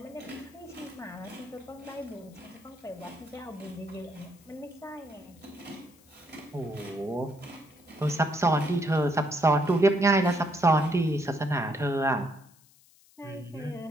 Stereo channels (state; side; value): noise; left; hiss, 28 dB below the sound